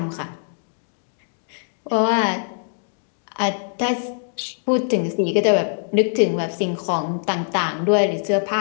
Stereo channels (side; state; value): right; silent; digital silence